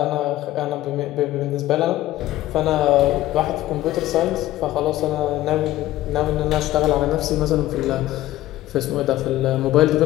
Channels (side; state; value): right; quieter; 15.3 dB